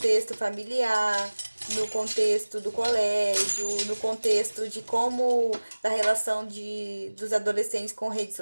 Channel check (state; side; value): inverted; both; correlation -1.00